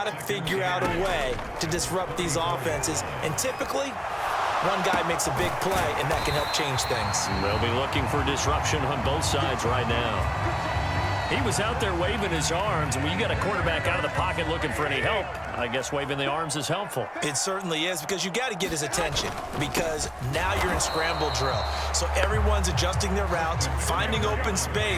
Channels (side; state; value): both; identical; correlation 1.00